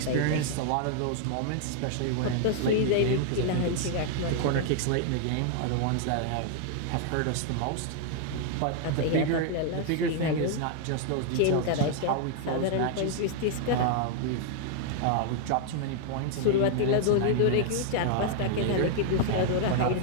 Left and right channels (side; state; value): both; different; correlation -0.01